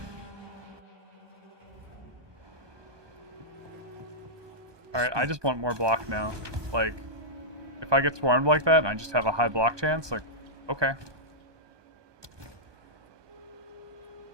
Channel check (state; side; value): late; left; 1.2 ms